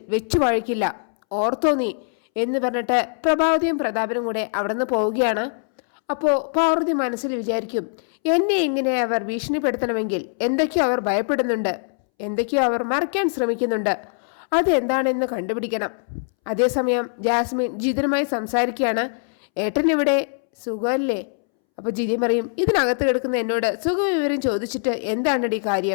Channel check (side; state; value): right; silent; 64 dB below the other